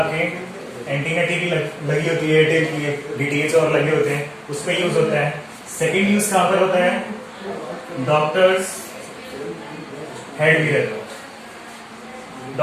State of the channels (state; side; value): identical; both; correlation 1.00